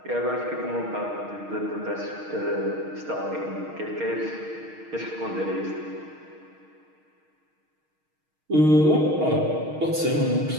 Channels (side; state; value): left; late; 6.4 ms